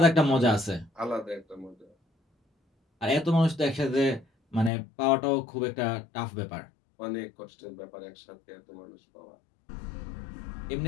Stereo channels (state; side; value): drops out; right; at 4.7 s